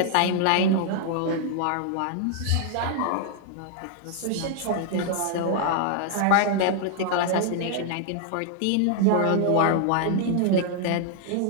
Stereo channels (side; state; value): both; different; correlation 0.00